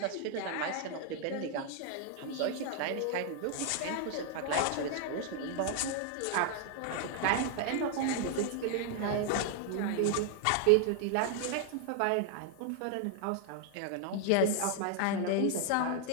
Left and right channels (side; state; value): both; different; correlation 0.00